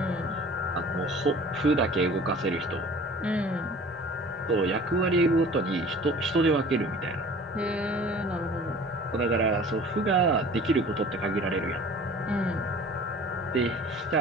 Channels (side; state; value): both; normal; correlation 0.44